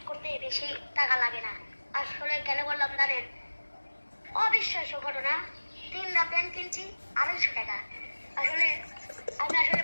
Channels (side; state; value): both; inverted; correlation -1.00